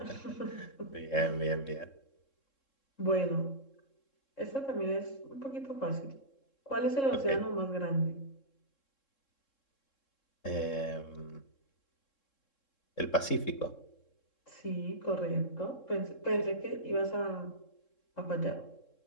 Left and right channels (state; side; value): late; right; 3.7 ms